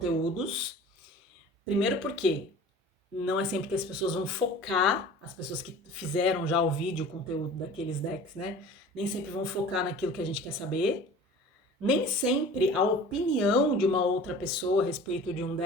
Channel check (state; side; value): normal; both; correlation 0.42